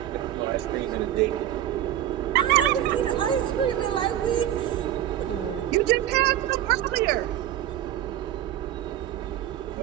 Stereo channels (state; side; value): quieter; left; 12.1 dB